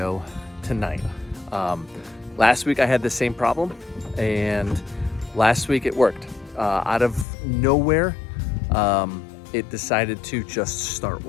tonight. Last week I had the same problem, and last week it worked. Out of nowhere, it decided to just start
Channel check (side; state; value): right; drops out; at 7.2 s